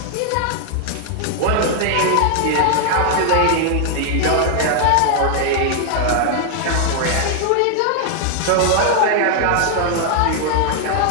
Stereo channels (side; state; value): both; different; correlation 0.00